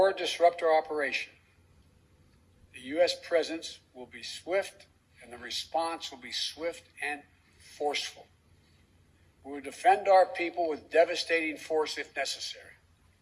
disrupt our operation, the U.S. presence will be swift and the response will be swift and forceful. We will defend our people with devastating force if necessary.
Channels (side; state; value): both; identical; correlation 1.00